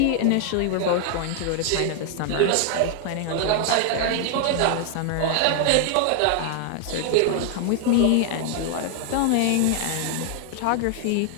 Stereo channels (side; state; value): both; different; correlation 0.00